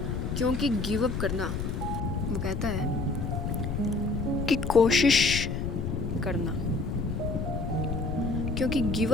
क्योंकि गिव अप करना, वो कहता है कि कोशिश करना, क्योंकि गिव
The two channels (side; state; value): left; noise; rumble, 2 dB below the sound